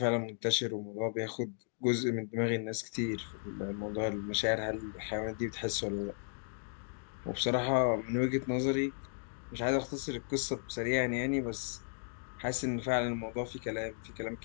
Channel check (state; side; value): silent; right; digital silence